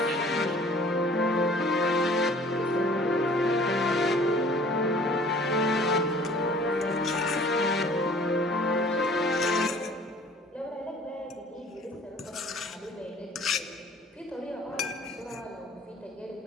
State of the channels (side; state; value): both; normal; correlation 0.51